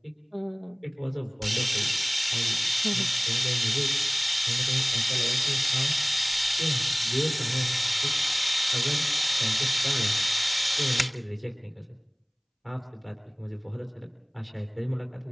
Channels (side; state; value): both; identical; correlation 1.00